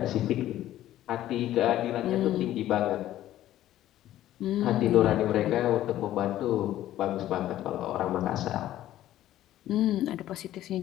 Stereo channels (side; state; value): right; quieter; 13.4 dB